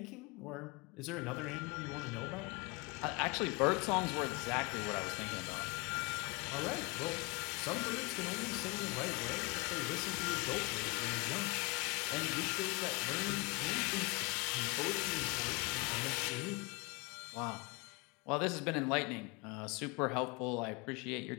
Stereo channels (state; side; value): quieter; right; 27.8 dB